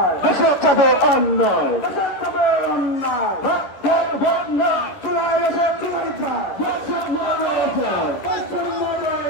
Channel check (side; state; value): right; late; 11 ms